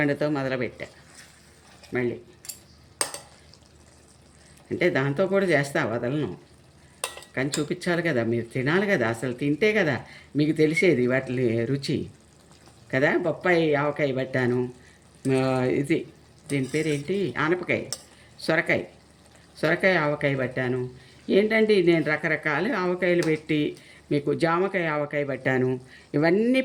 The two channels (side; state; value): both; identical; correlation 1.00